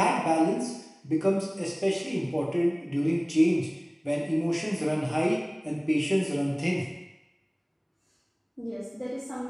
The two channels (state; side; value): identical; both; correlation 1.00